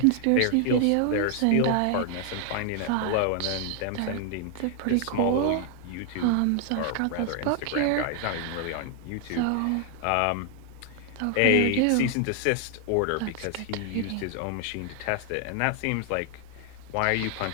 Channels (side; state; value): both; different; correlation 0.00